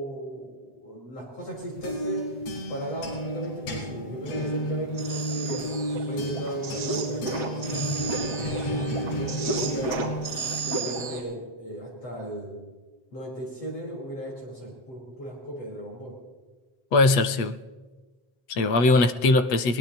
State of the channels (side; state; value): right; late; 8.2 ms